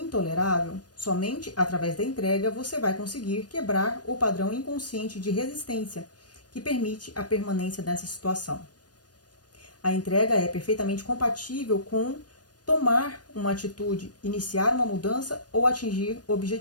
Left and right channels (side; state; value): right; late; 0.69 ms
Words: somente através da entrega você vai conseguir quebrar o padrão inconsciente de resistência que permite a permanência dessa situação. A entrega é perfeitamente compatível com tomar uma atitude, iniciar uma mudança ou atingir